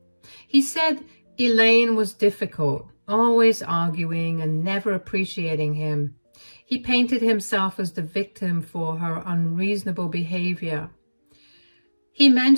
He said Elaine was difficult, always arguing and never appreciating him. He painted himself as the victim for her unreasonable behavior. He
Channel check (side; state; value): both; inverted; correlation -1.00